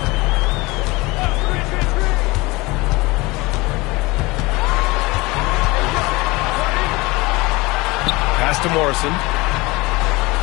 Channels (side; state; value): right; quieter; 23.0 dB